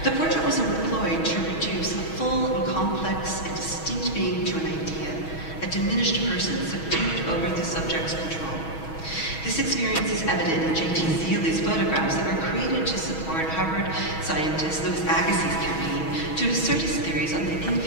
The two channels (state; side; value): late; right; 6.2 ms